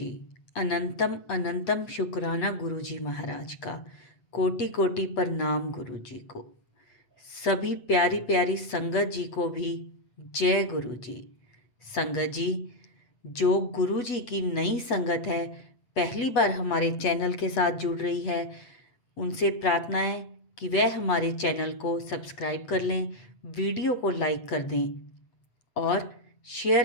अनंतम अनंतम शुक्राना गुरुजी महाराज का। कोटि कोटि प्रणाम गुरुजी को। सभी प्यारी प्यारी संगत जी को भी जय गुरुजी। संगत जी, जो गुरुजी की नई संगत है, पहली बार हमारे चैनल के साथ जुड़ रही है, उनसे प्रार्थना है कि वह हमारे चैनल को सब्सक्राइब कर लें, वीडियो को लाइक कर दें और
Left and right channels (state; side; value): late; right; 8.0 ms